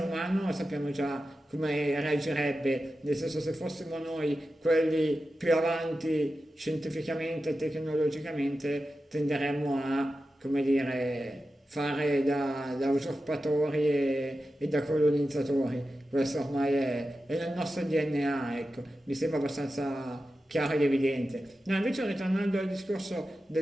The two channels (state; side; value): normal; both; correlation 0.92